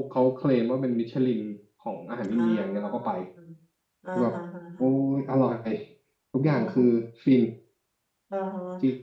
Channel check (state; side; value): identical; both; correlation 1.00